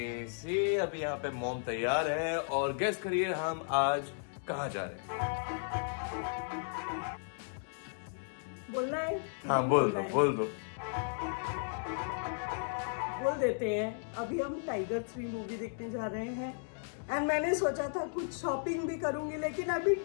सी, अभी यहाँ पे मॉम तैयार है और गेस करिए हम आज कहाँ जा रहे हैं। बोलना है? हाँ बोल दो। बोल देते हैं। अभी हम टाइगर 3 मूवी देखने जा रहे हैं एंड मैंने सोचा था कुछ शॉपिंग भी करूंगी, लेकिन अभी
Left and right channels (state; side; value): silent; right; digital silence